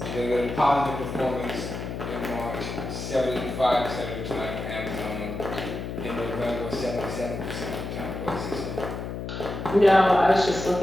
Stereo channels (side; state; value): left; noise; hum, 6 dB below the sound